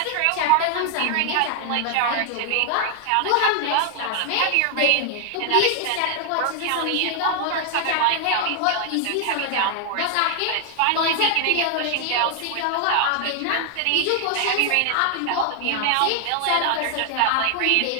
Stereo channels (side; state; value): both; different; correlation 0.00